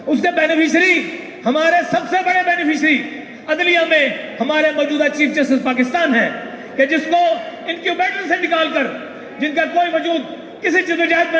اس کے بینیفیشری، ہمارے سب سے بڑے بینیفیشری عدلیہ میں ہمارے موجودہ چیف جسٹس پاکستان ہیں، کہ جس کو انکیوبیٹر سے نکال کر، جن کا کوئی وجود کسی جدوجہد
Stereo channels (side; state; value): both; identical; correlation 1.00